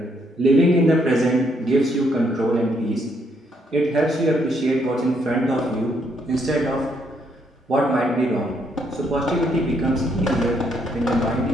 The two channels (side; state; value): both; normal; correlation 0.72